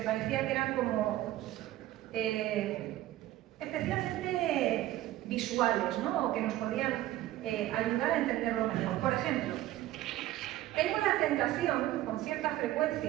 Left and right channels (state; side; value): quieter; left; 15.0 dB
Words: parecía que eran como especialmente visuales, ¿no? O que nos podían ayudar a entenderlo mejor. Por ejemplo, tengo la tentación, con cierta